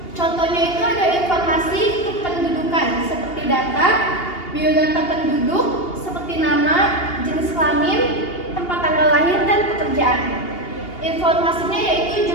Contohnya itu ada informasi kependudukan seperti data, biodata penduduk seperti nama, jenis kelamin, tempat tanggal lahir, dan pekerjaan. Informasinya yaitu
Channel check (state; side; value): late; right; 2.8 ms